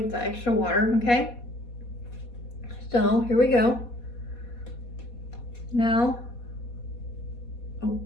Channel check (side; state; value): right; late; 4.2 ms